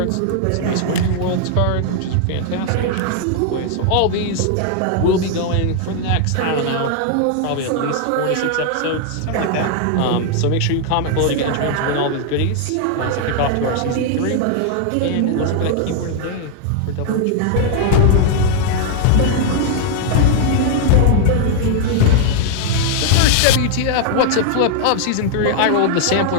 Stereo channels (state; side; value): different; both; correlation 0.00